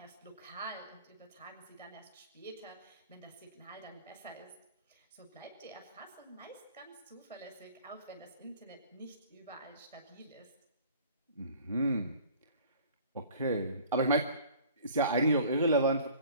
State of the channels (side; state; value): both; inverted; correlation -0.49